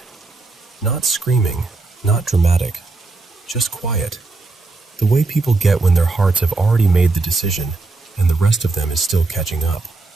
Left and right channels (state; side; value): quieter; left; 3.6 dB